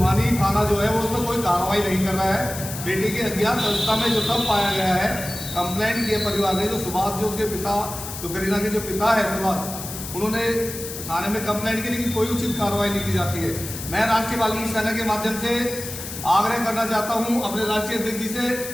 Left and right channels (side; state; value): left; noise; hiss, 9 dB below the sound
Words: थाना जो है वो उसमें कोई कार्रवाई नहीं कर रहा है। बेटी की अज्ञात अवस्था में जो सब पाया गया है, कंप्लेंट किए परिवार ने, जो सुभाष, जो उसके पिता, जो करीना के जो पिता है सुभाष, उन्होंने थाने में कंप्लेंट की, लेकिन कोई उचित कार्रवाई नहीं की जाती है। मैं राष्ट्रीय वाल्मीकि सेना के माध्यम से आग्रह करना चाहता हूं अपने राष्ट्रीय अध्यक्ष जी से